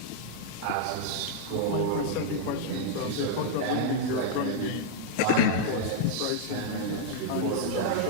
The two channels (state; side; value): different; both; correlation -0.01